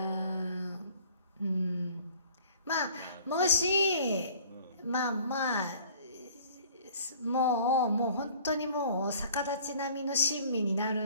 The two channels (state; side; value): inverted; both; correlation -0.51